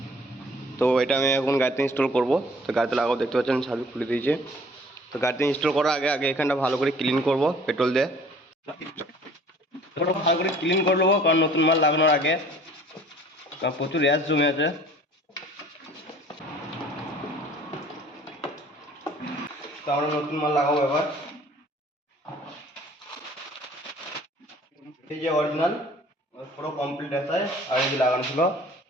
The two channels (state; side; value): normal; both; correlation 0.51